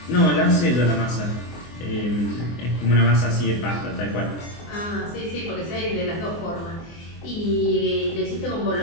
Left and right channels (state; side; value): late; right; 24 ms